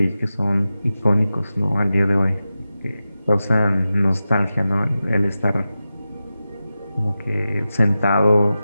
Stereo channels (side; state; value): both; inverted; correlation -0.93